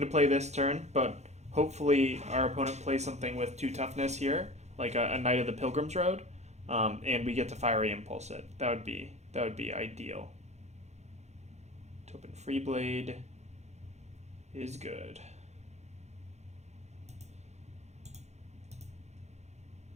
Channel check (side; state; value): left; late; 0.32 ms